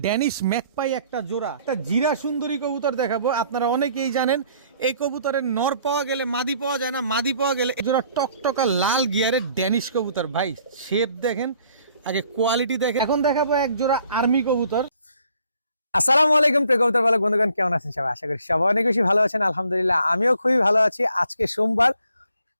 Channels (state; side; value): inverted; both; correlation -0.62